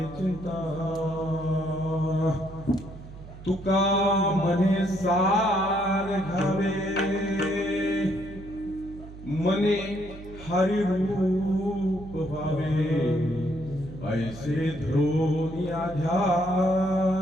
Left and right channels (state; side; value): noise; right; hum, 15 dB below the sound